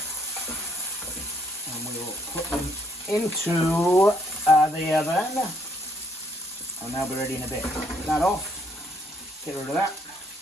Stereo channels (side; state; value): both; normal; correlation 0.70